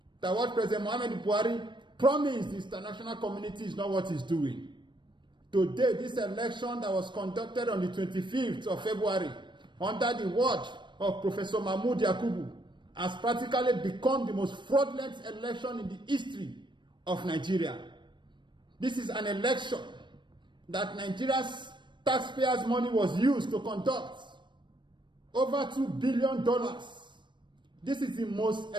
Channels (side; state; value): left; late; 0.22 ms